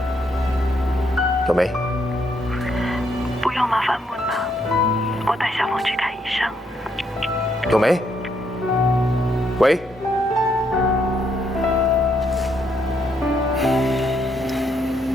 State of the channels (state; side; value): normal; both; correlation 0.74